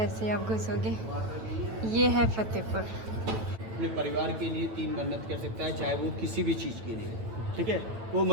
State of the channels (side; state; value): left; late; 9.1 ms